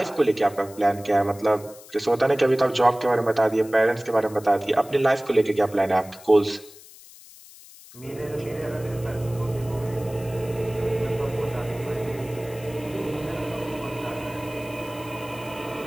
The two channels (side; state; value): left; noise; hiss, 20 dB below the sound